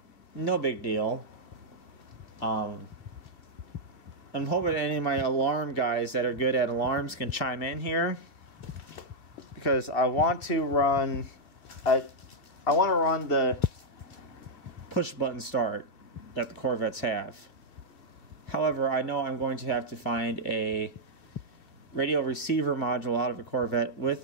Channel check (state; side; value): late; right; 2.5 ms